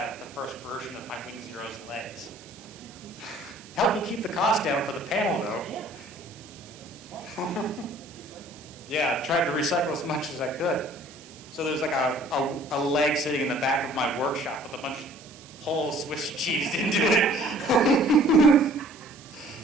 of the first version of my Wing Zero's legs. Helped me keep the cost down for the panel though. Yeah, I tried to recycle as much as I could. So there's like a leg sitting in the back of my workshop with a bunch of holes Swiss cheesed into it.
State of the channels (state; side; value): noise; right; hiss, 21 dB below the sound